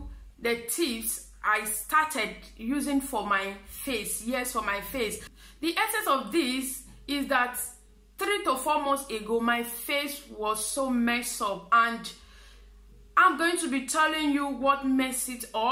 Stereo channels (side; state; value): both; identical; correlation 1.00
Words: the tips I started using for my face. Yes, for my face. The essence of this is that 3 to 4 months ago, my face was so messed up, and I'm going to be telling you what messed it